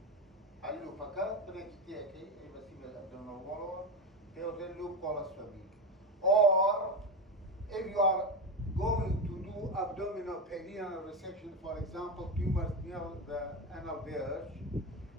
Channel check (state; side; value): normal; both; correlation 0.16